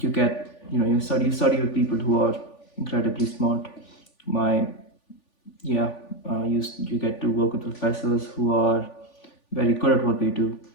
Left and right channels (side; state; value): right; late; 3.5 ms